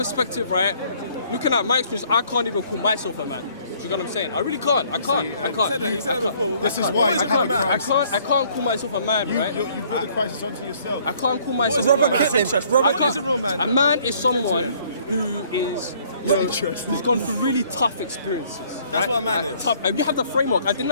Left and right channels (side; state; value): both; inverted; correlation -0.61